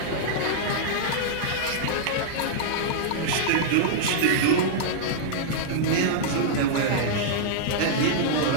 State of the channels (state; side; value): different; both; correlation -0.02